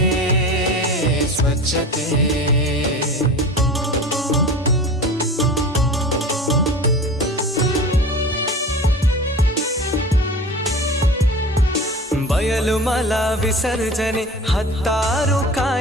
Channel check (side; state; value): both; normal; correlation 0.36